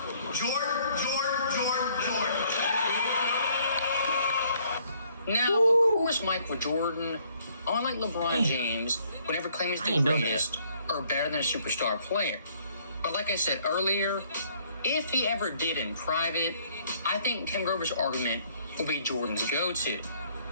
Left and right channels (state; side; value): inverted; both; correlation -0.64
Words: Jordan. Now, of course, Michael Jordan, unlike LeBron James, would never claim he's the greatest or better than a superstar player. But like I said earlier, if he ever did in private, I think Tim Grover's argument will be Jordan's go-to.